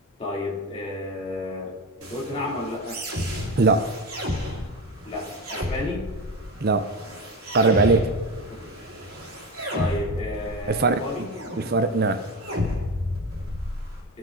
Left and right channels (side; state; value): both; normal; correlation 0.21